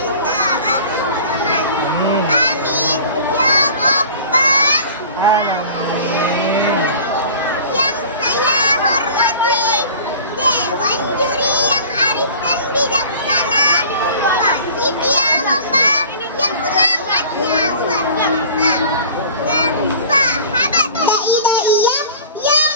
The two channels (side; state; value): both; inverted; correlation -0.42